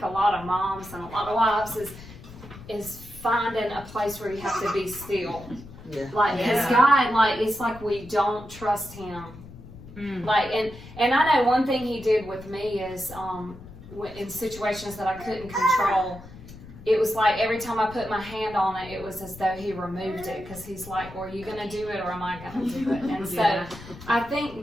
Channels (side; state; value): left; noise; rumble, 17 dB below the sound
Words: a lot of moms and a lot of wives is finding a place where you have to be still. Yeah. Like, because Yeah. God, like, it's like we don't trust Him. Like, and I know one thing He did with me is, in situations that I couldn't control, it was like every time I put my hand on it, it was as though He removed it, because He's like, well, are you going to do it or am I going to do it? And so Yeah. I